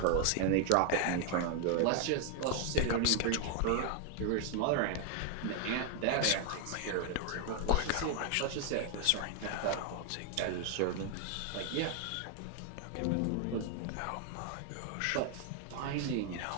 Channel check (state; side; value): different; both; correlation 0.00